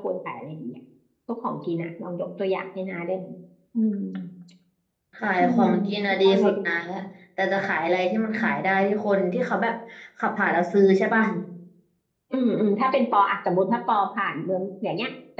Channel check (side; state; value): both; identical; correlation 1.00